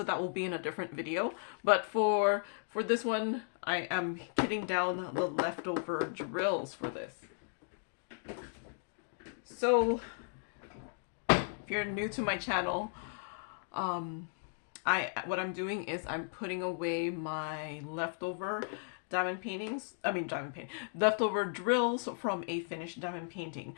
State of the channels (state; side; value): silent; right; digital silence